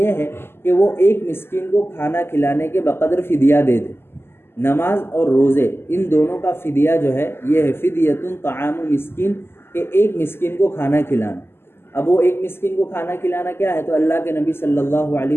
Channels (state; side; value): late; right; 0.12 ms